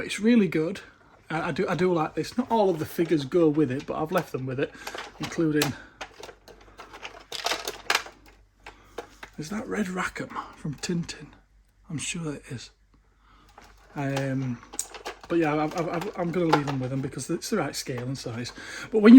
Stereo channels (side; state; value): both; identical; correlation 1.00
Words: really good. I do like this. Not all of the figures go with it, but I've left them with it, including... Is that Red Rackham from Tintin? I'm sure it is. But yeah, I'm going to leave them with them because it's the right scale and size. But when